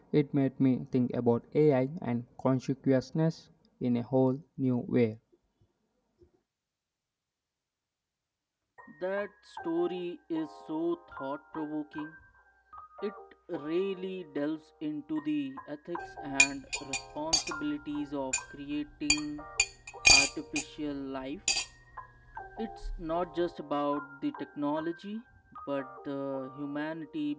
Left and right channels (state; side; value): identical; both; correlation 1.00